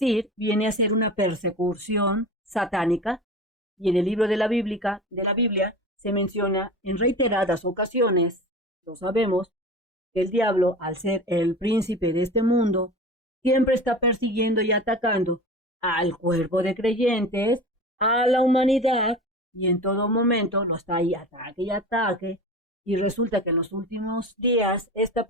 viene a ser una persecución satánica, y en el libro de la Biblia se menciona en reiteradas ocasiones, lo sabemos, que el diablo, al ser el príncipe de este mundo, siempre está persiguiendo y atacando al cuerpo de creyentes, a la humanidad, y en todo momento lo está ahí ataque y ataque, y resulta que en los últimos días esta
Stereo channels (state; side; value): normal; both; correlation 0.33